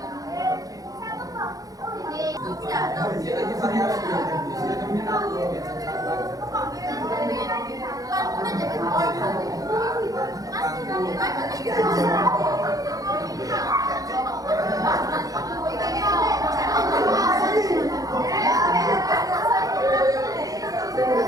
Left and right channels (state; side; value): late; left; 0.17 ms